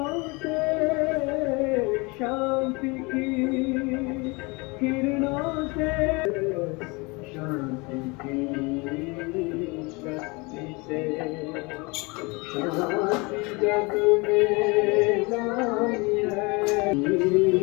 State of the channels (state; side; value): quieter; right; 27.2 dB